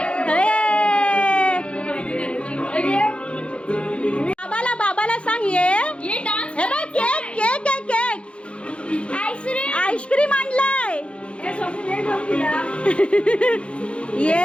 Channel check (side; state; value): right; late; 0.059 ms